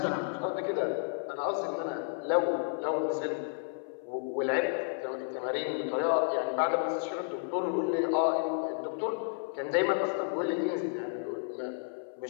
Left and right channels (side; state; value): right; silent; 57 dB below the other